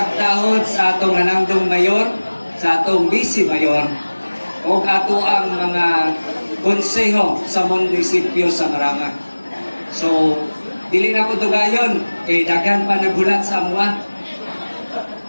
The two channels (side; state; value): both; inverted; correlation -1.00